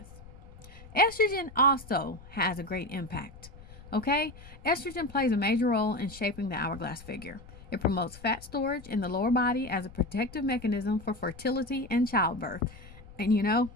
Estrogen also has a great impact. Okay? Estrogen plays a major role in shaping the hourglass figure. It promotes fat storage in the lower body as a protective mechanism for fertility and childbirth. And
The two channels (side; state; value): left; noise; rumble, 18 dB below the sound